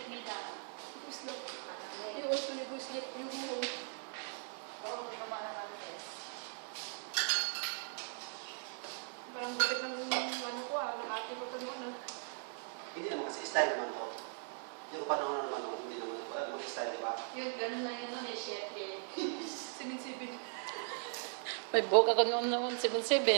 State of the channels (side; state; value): left; silent; 52 dB below the other